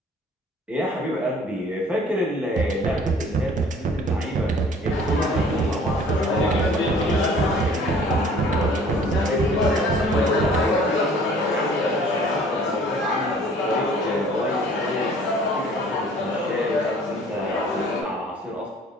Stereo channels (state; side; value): normal; both; correlation 0.53